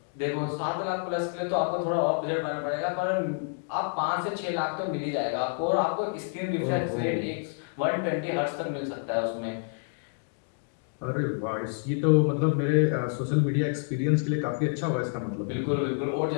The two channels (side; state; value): right; silent; 59 dB below the other